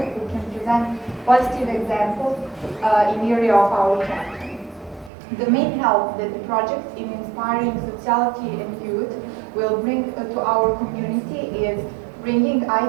can present positive examples in area of our country. The main help that the project in inspiring sociality and youth will bring to our community is bringing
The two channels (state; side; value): drops out; left; at 5.1 s